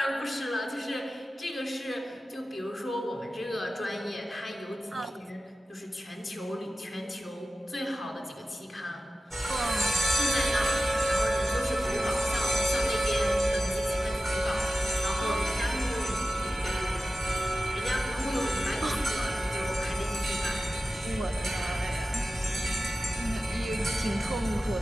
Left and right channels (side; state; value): both; normal; correlation 0.95